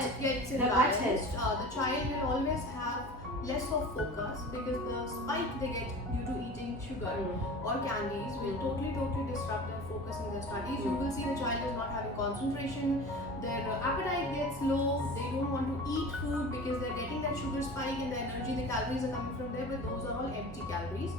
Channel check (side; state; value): both; normal; correlation 0.37